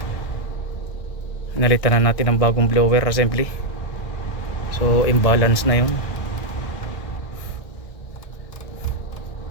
Nalitan na natin ng bagong blower assembly. So imbalance na yun.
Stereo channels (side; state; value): right; late; 1.6 ms